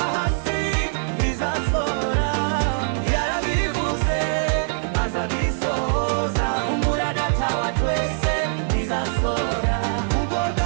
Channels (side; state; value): left; silent; 64 dB below the other